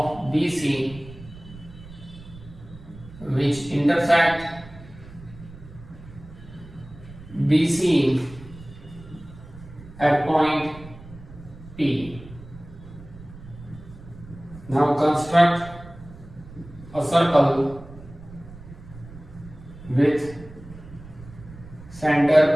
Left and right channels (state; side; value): noise; right; rumble, 17 dB below the sound